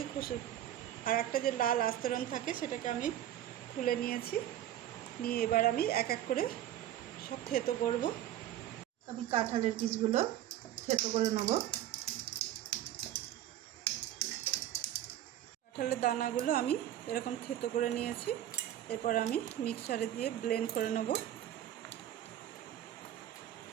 আর একটা যে লাল আস্তরণ থাকে সেটাকে আমি খুলে নিয়েছি। নিয়ে এবার আমি এক এক করে সব থেতো করব। আমি কাঁঠালের বীজগুলো থেতো করে নেব। কাঁঠালের দানাগুলো আমি এরকম থেতো করে নিয়েছি। এরপর আমি মিক্সারে দিয়ে ব্লেন্ড করে নেব।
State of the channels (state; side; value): quieter; left; 12.2 dB